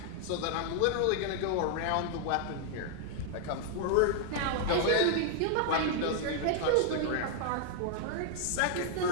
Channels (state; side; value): different; both; correlation 0.00